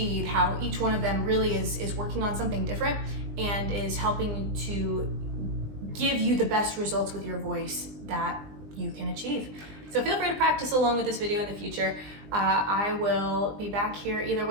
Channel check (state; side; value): late; left; 20 ms